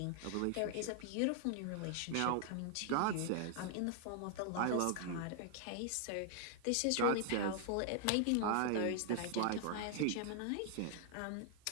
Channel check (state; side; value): different; both; correlation 0.00